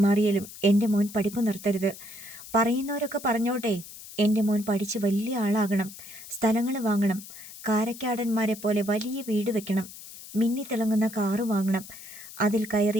എൻ്റെ മോൻ പഠിപ്പ് നിർത്തരുത്. പറയുന്നവരൊക്കെ പറഞ്ഞോട്ടെ. എൻ്റെ മോൻ പഠിച്ച് വലിയ ആളാകണം, സ്ഥലങ്ങൾ വാങ്ങണം, കാരക്കാടന്മാരെ പോലെ വലിയ വീട് വെക്കണം, മിന്നിത്തിളങ്ങുന്ന കാറ് വാങ്ങണം, അതിൽ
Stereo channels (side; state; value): left; noise; hiss, 15 dB below the sound